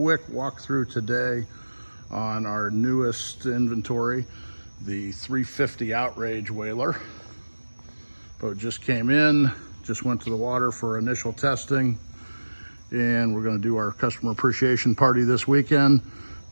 walkthrough today on our newest inventory, the 350 Outrage whaler. Boat just came in, just went to the water for initial testing, and we're going to do our customer appreciation party this weekend.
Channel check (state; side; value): inverted; both; correlation -1.00